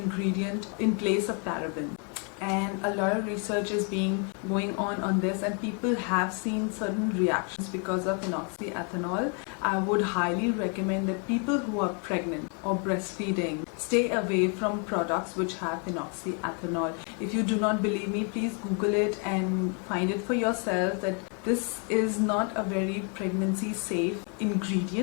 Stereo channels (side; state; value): right; quieter; 38.4 dB